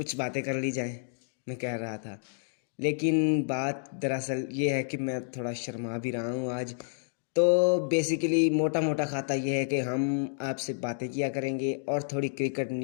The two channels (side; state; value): right; silent; digital silence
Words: बातें कर ली जाए, मैं कह रहा था। लेकिन बात दरअसल ये है कि मैं थोड़ा शर्मा भी रहा हूँ आज। तो बेसिकली मोटा मोटा खाता ये है कि हम आपसे बातें किया करेंगे और थोड़ी क्रिकेट